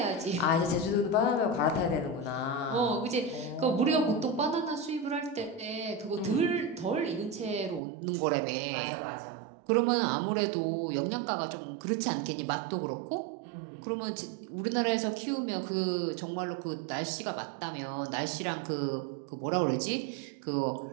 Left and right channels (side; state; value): left; drops out; at 7.8 s